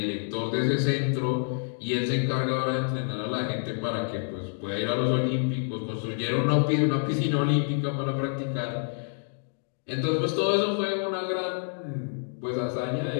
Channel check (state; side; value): silent; right; 57 dB below the other